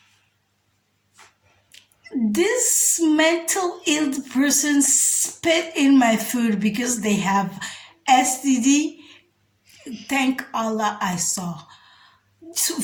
mental ill person spit in my food because they have STD. Thank Allah I saw.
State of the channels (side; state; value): both; identical; correlation 1.00